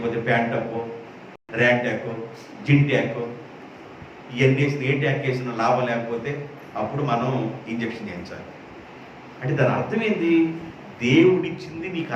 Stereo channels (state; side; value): identical; both; correlation 1.00